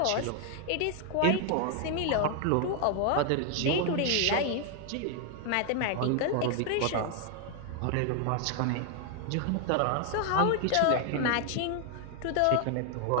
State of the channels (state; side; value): different; both; correlation 0.00